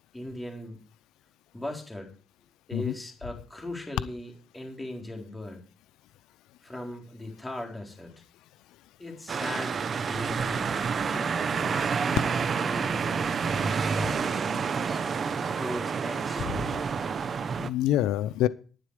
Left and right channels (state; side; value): normal; both; correlation 0.71